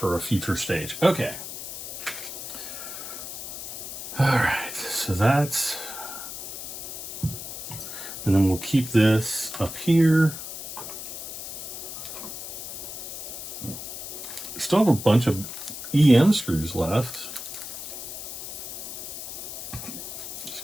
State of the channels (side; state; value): left; noise; hiss, 8 dB below the sound